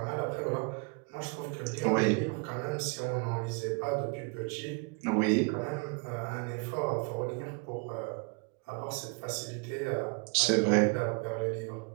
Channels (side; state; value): left; quieter; 32.1 dB